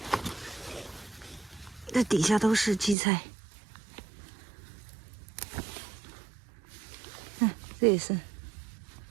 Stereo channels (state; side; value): drops out; left; at 3.0 s